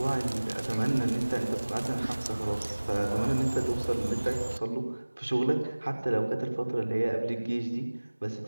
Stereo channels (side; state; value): both; inverted; correlation -1.00